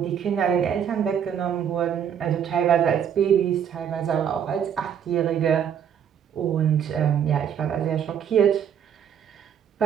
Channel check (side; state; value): left; quieter; 8.5 dB